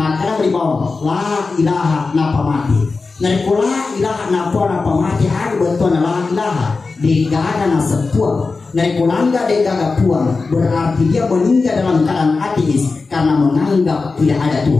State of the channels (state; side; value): quieter; right; 4.1 dB